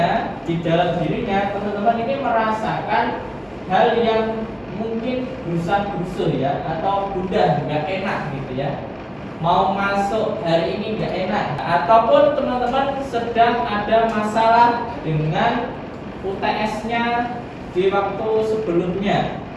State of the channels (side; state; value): both; identical; correlation 1.00